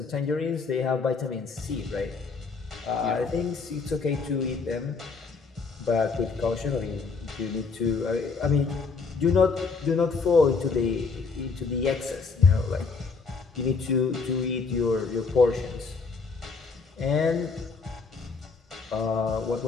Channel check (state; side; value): quieter; right; 4.7 dB